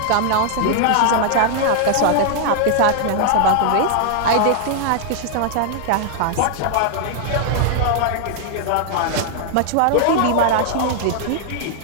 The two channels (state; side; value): different; both; correlation 0.00